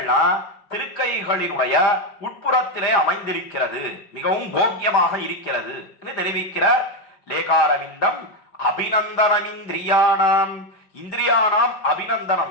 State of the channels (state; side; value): late; right; 5.0 ms